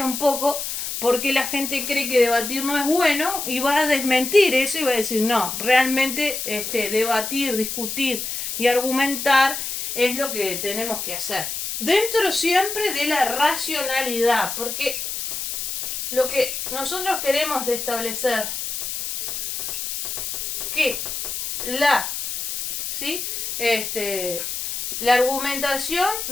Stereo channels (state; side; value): noise; left; hiss, 4 dB below the sound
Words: un poco por qué la gente cree que debatir no es bueno y va a desmentir eso y va a decir, no, realmente debatir, discutir y argumentar es lo que tenemos que hacer. Dentro siempre de la racionalidad, porque lo que nosotros queremos de establecer que ¿sí?, la argumentación